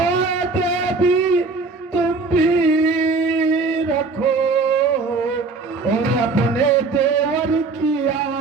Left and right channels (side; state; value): left; quieter; 4.0 dB